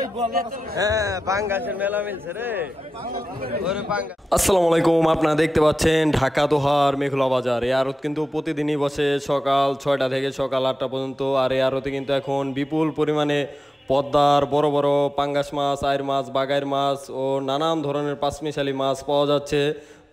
হ্যাঁ বাঙ্গাসের মেলা মিলছে রে। আসসালামু আলাইকুম, আপনারা দেখতে পাচ্ছেন ঢাকা দোহার মেঘলা বাজার। এই আড়ত কিন্তু প্রতিদিনই বসে সকাল 6টা থেকে সকাল 8টা পর্যন্ত। আর এই আড়তে কিন্তু এখন বিপুল পরিমাণে পদ্মার বড় বড় পাঙ্গাস মাছ, আইর মাছ, বাগাইর মাছ ও নানান ধরনের পাঁচমিশালি মাছ পাওয়া যাচ্ছে।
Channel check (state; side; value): normal; both; correlation 0.93